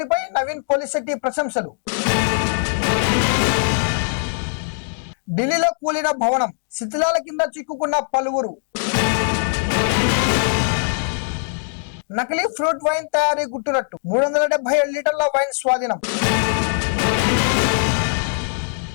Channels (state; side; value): silent; right; digital silence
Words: నవీన్ పోలిశెట్టి ప్రశంసలు. ఢిల్లీలో కూలిన భవనం, శిథిలాల కింద చిక్కుకున్న పలువురు. నకిలీ ఫ్రూట్ వైన్ తయారీ గుట్టురట్టు, 377 లీటర్ల వైన్ స్వాధీనం.